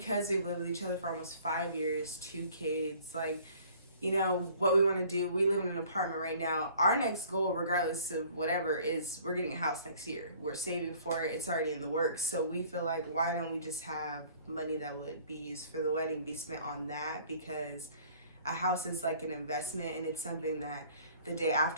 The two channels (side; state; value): both; inverted; correlation -0.54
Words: we've lived with each other for almost 5 years, 2 kids, like, you know, what we want to do, we live in an apartment right now. Our next goal, regardless of whatever, is we're getting a house next year. We're saving for it. It's already in the works. So we feel like, why don't we just have money that would be used for the wedding be spent on that? Because a house is like an investment, and it's something that the day